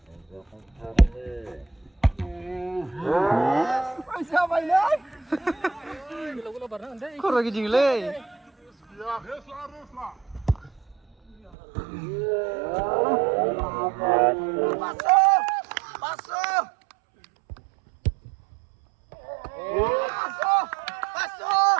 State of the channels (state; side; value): drops out; left; at 11.5 s